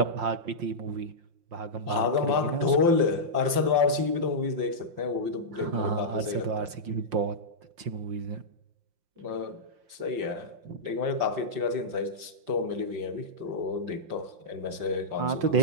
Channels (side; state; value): left; late; 5.7 ms